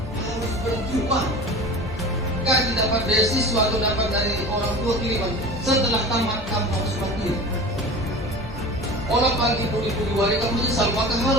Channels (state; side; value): normal; both; correlation 0.35